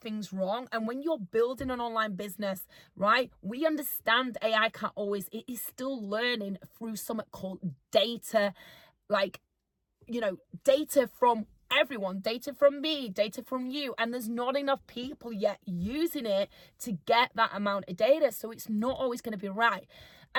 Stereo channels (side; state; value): both; identical; correlation 1.00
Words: things wrong. And when you're building an online business, right, we understand AI can't always, it is still learning through something called data, like, data from everyone, data from me, data from you. And there's not enough people yet using it to get that amount of data. So it's not always going to be right.